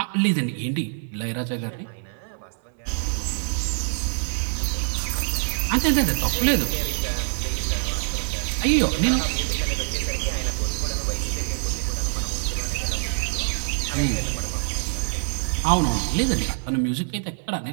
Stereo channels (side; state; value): left; silent; 57 dB below the other